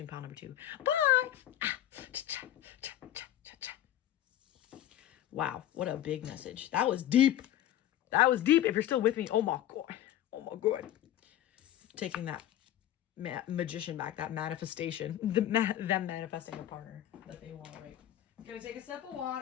pile number 2. Bye. Wow, what a big message. That was deep. That was deep. If you're still with me, oh my God. Oh my God. Taking that magician back, that manifestation, them manifesting a partner that they want, right? Gonna take a sip of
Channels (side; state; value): right; quieter; 12.4 dB